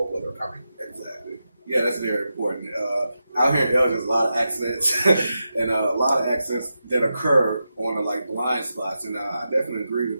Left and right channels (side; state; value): both; inverted; correlation -0.89